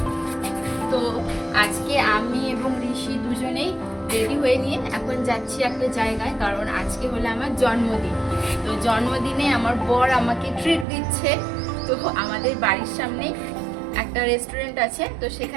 তো আজকে আমি এবং ঋষি দুজনেই রেডি হয়ে নিয়ে এখন যাচ্ছি একটা জায়গায়, কারণ আজকে হলো আমার জন্মদিন। তো জন্মদিনে আমার বর আমাকে ট্রিট দিচ্ছে। তো আমাদের বাড়ির সামনে একটা রেস্টুরেন্ট আছে, তো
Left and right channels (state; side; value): drops out; left; at 10.9 s